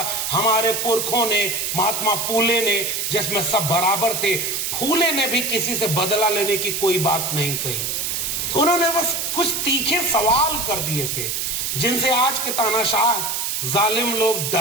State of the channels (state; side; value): noise; right; hiss, 1 dB below the sound